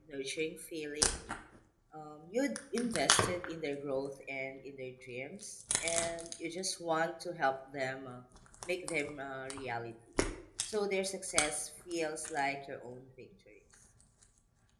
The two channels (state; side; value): identical; both; correlation 1.00